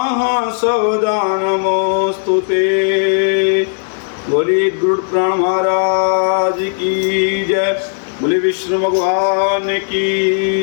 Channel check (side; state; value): right; silent; 62 dB below the other